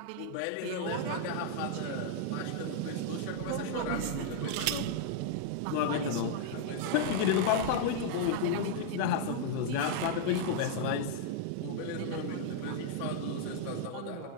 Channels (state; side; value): different; both; correlation -0.01